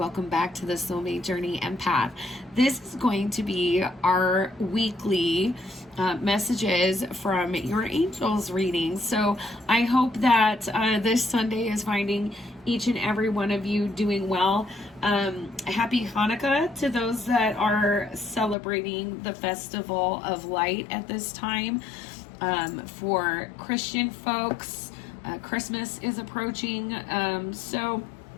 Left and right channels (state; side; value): drops out; right; at 18.6 s